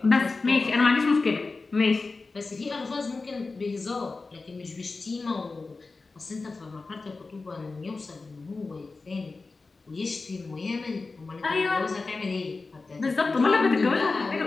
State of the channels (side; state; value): right; quieter; 3.9 dB